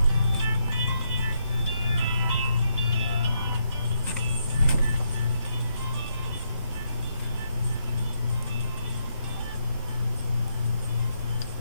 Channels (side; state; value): both; inverted; correlation -0.78